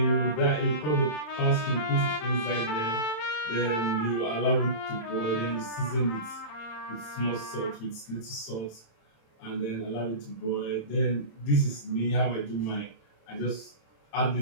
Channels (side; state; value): right; late; 27 ms